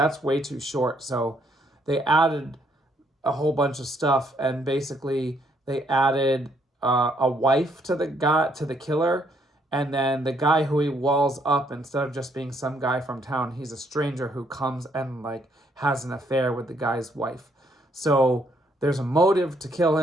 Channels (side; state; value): both; normal; correlation 0.70